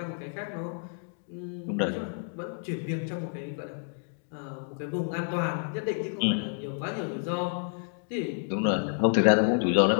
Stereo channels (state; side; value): silent; right; 58 dB below the other